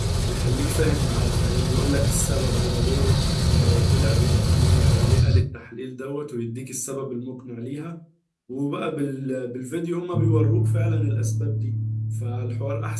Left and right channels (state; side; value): identical; both; correlation 1.00